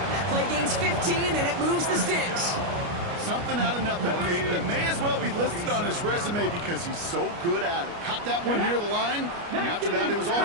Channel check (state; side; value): late; left; 29 ms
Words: That play gains 15, and it moves the sticks. Something out of nothing, Kate, that may as well be listed on his resume because he's so good at it. Caught that one near the line, and after that it was all